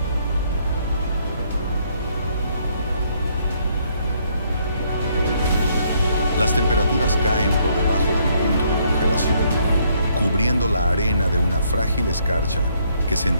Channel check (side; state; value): both; inverted; correlation -0.69